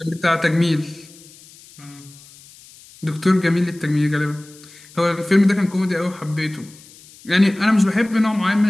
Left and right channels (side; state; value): left; noise; hiss, 23 dB below the sound